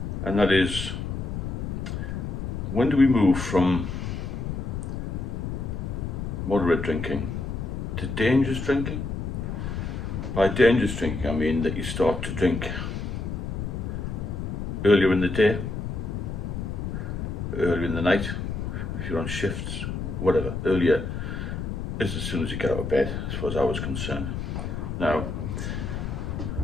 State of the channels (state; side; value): noise; left; rumble, 4 dB below the sound